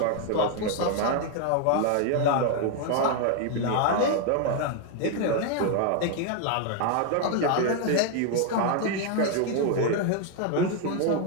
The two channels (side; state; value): both; different; correlation 0.01